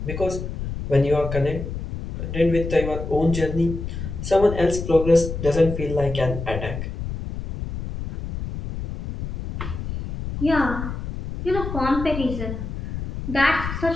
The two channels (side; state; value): left; noise; rumble, 6 dB below the sound